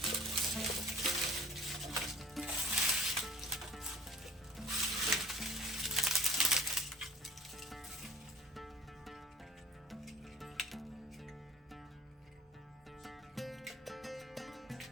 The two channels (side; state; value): both; normal; correlation 0.46